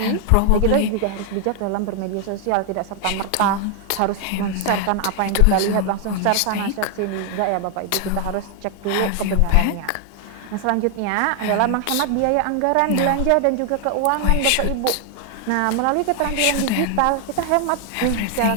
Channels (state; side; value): different; both; correlation 0.00